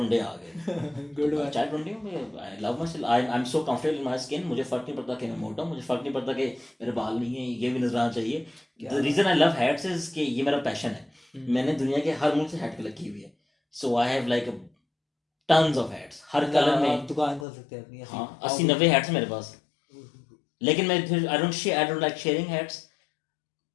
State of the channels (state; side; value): drops out; right; at 17.4 s